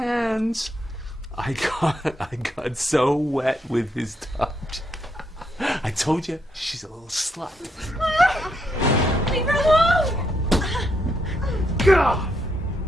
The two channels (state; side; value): normal; both; correlation 0.78